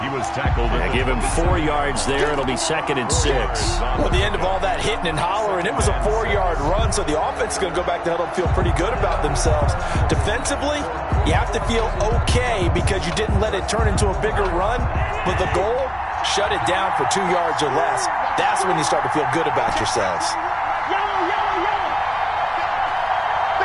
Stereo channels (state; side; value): identical; both; correlation 1.00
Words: He was tackled. I give him 4 yards there. It'll be 2nd and 6. Well, at the end of all that hitting and hollering, it was a 4-yard run, so the offense is going to go back to huddle and feel pretty good about themselves. Defensively, you have to feel okay because you didn't let it turn into a bigger run. But the goal, shut it down for 2 yards or less. That's when you start to feel good about yourselves.